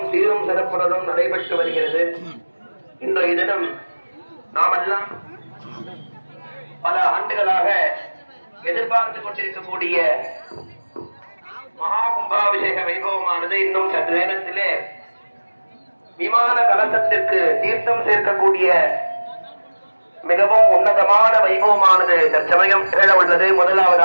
சீரும் சிறப்புடனும் நடைபெற்று வருகிறது. இன்றைய தினம் நாமெல்லாம் பல ஆண்டுகளாக எதிர்பார்த்து கொண்டிருக்கக்கூடிய மகா கும்பாபிஷேக வைபவமானது இன்னும் சற்று நேரத்திலே விமான கலசத்திற்கு தீர்த்தம் சேர்க்கக்கூடிய மிகவும் உன்னதமான வைபவமானது தற்சமயம் நிகழ உள்ளது.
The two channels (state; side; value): inverted; both; correlation -1.00